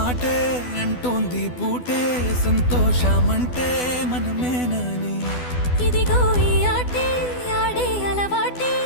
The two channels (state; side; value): late; right; 12 ms